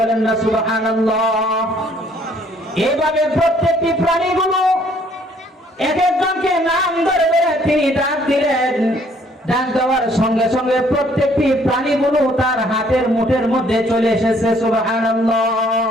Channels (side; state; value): both; normal; correlation 0.62